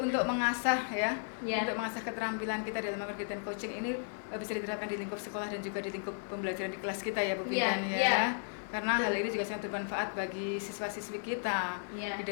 mengasah untuk mengasah keterampilan kita dalam kegiatan coaching ini bisa diterapkan di lingkup sekolah dan juga di lingkup pembelajaran di kelas kita ya Bu Bintan Karena hal ini juga sangat bermanfaat bagi siswa-siswi kita di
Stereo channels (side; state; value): right; silent; digital silence